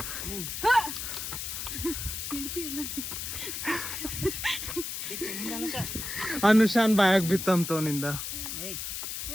ಅನುಷಾನ್ ಬಾಯಾಗ ಬಿತ್ತಂತವನಿಂದ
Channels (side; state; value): left; noise; hiss, 5 dB below the sound